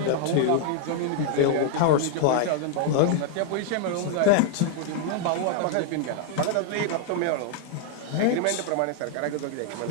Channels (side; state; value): both; different; correlation -0.01